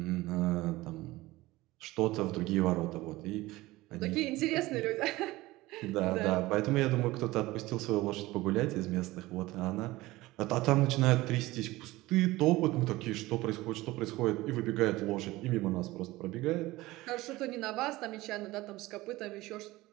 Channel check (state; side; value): quieter; left; 19.0 dB